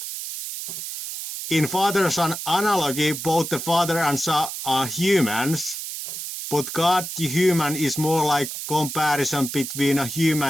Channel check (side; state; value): right; noise; hiss, 7 dB below the sound